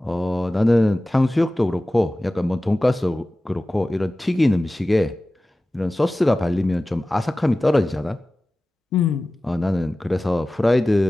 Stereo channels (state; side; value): normal; both; correlation 0.96